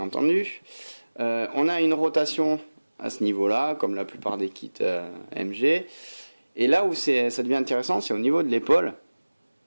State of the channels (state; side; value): inverted; both; correlation -1.00